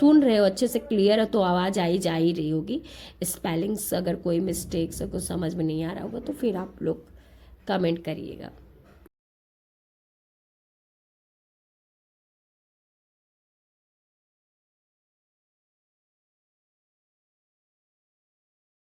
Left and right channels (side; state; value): both; identical; correlation 1.00